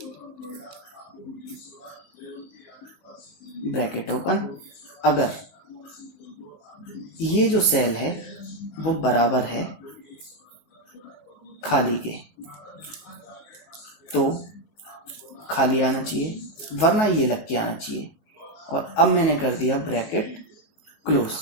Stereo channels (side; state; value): right; late; 19 ms